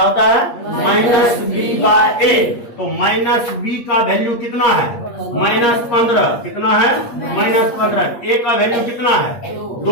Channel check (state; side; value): late; right; 8.5 ms